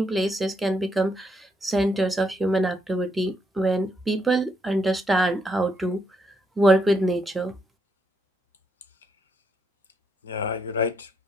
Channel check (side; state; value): both; normal; correlation 0.76